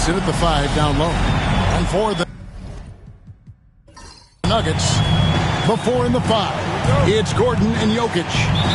in at the 5 down low. And for the Nuggets, the 4 and the 5. It's Gordon and Jokic.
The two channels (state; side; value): identical; both; correlation 1.00